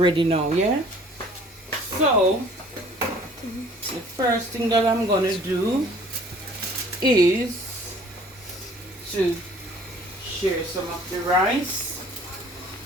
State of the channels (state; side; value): normal; both; correlation 0.53